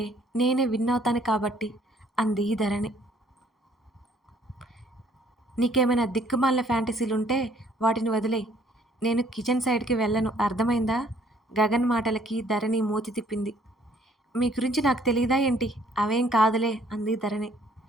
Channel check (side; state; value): both; normal; correlation 0.62